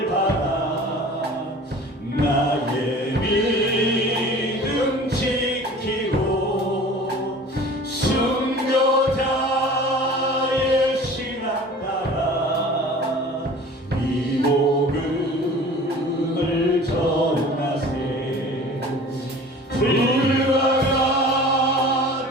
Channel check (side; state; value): both; normal; correlation 0.43